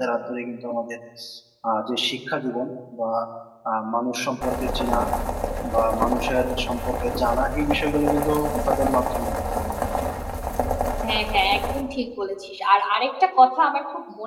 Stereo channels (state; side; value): identical; both; correlation 1.00